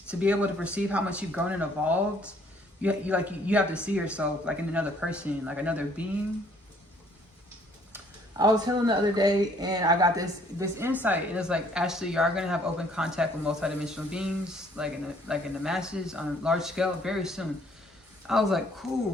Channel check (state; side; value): normal; both; correlation 0.61